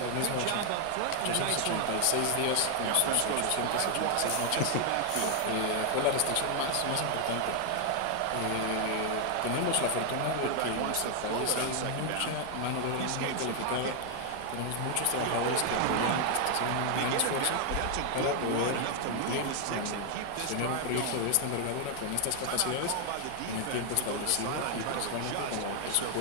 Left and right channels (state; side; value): different; both; correlation 0.00